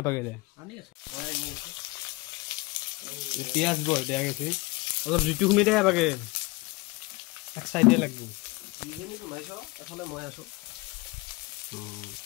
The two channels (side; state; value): right; quieter; 23.5 dB